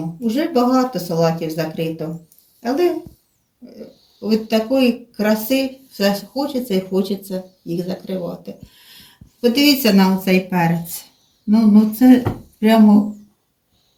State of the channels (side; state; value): both; identical; correlation 1.00